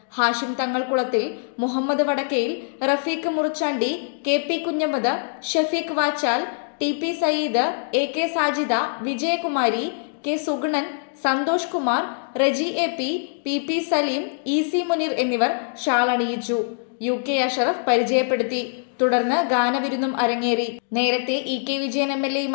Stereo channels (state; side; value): silent; right; digital silence